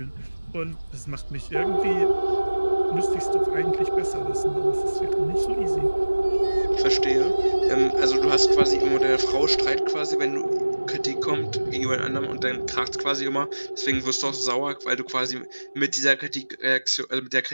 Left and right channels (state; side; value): inverted; both; correlation -1.00